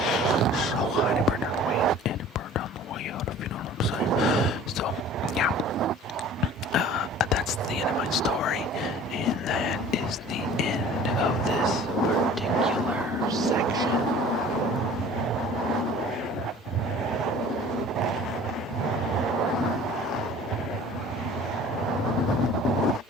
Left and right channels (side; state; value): both; normal; correlation 0.46